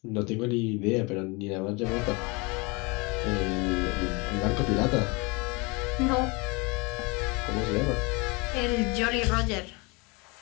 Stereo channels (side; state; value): right; quieter; 27.7 dB